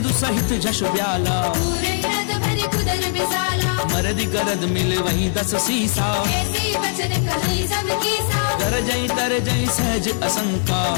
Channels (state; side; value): silent; right; 59 dB below the other